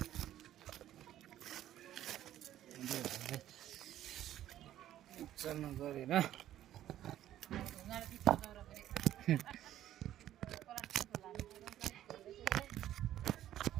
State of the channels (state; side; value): quieter; left; 12.4 dB